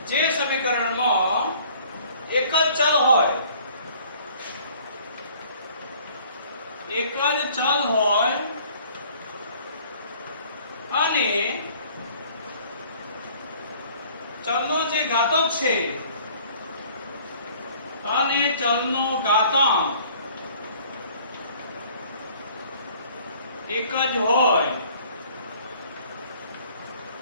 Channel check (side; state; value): both; inverted; correlation -0.54